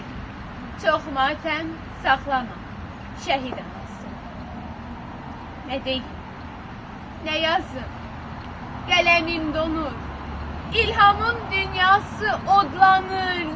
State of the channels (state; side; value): identical; both; correlation 1.00